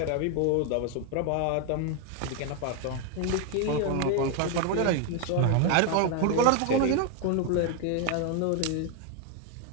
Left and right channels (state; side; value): different; both; correlation 0.01